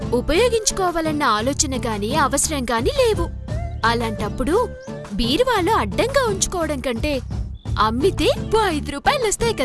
ఉపయోగించుకోవాలన్న ఆలోచన గాని అవసరం గాని లేవు. అలాంటప్పుడు బీరువాలో అడ్డంగా ఉంచుకోవడం కంటే అమ్మితే 5 రూపాయలు వస్తాయి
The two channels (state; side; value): identical; both; correlation 1.00